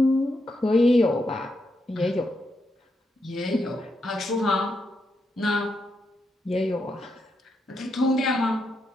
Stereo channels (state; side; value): normal; both; correlation 0.82